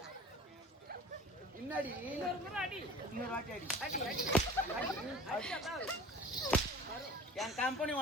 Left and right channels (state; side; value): normal; both; correlation 0.41